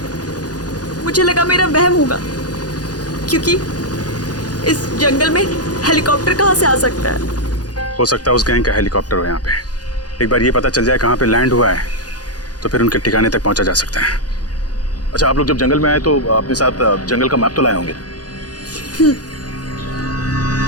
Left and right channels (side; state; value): right; late; 0.69 ms